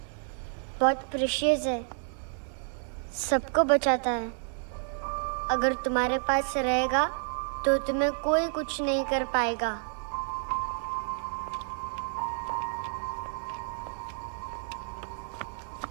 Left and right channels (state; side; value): silent; left; 58 dB below the other